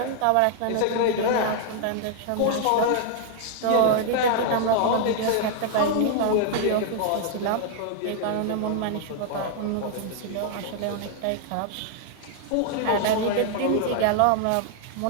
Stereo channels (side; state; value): both; different; correlation 0.00